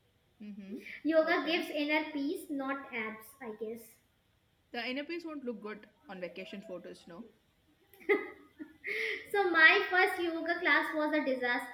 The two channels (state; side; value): identical; both; correlation 1.00